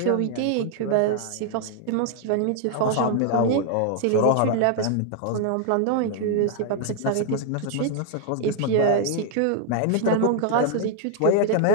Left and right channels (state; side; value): different; both; correlation 0.00